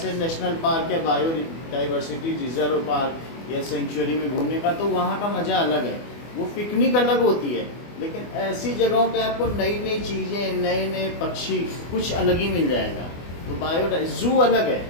नेशनल पार्क या बायोडाइवर्सिटी रिजर्व पार्क या सेंचुरी में घूमने का, तो वहाँ का मज़ा अलग है। वो पिकनिक अलग होती है, लेकिन ऐसी जगहों पे आपको नई नई चीज़ें, नए नए पक्षी, कुछ अलग ही मिल जाएगा। तो जू अलग है।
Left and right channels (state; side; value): late; right; 24 ms